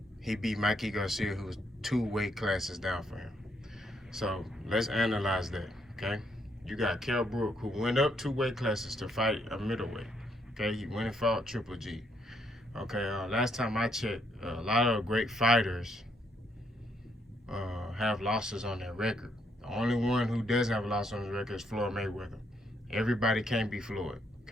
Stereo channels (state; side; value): normal; both; correlation 0.73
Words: he beat Mikey Garcia, who was 2 weight classes down for him. So let's analyze that, okay? You got Brook, who went up 2 weight classes to fight a middleweight. Okay, he went and fought Triple G. Okay, last time I checked, a lot of great fighters have losses on their record. The only one who doesn't have a loss on his record is Floyd Mayweather. Everybody can't be Floyd.